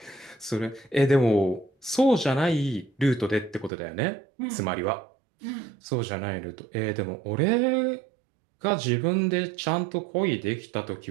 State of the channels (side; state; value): left; drops out; at 3.7 s